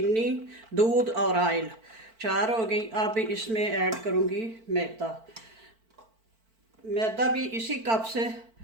दूध और ऑयल, 4 हो गई। अब इसमें ऐड करूँगी मैदा। मैदा भी इसी कप से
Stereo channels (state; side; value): late; left; 4.5 ms